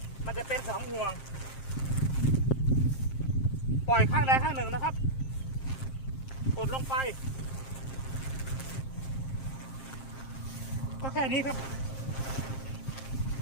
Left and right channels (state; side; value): late; right; 7.5 ms